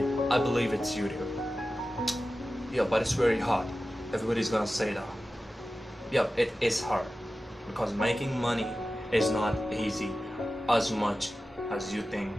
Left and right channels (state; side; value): normal; both; correlation 0.94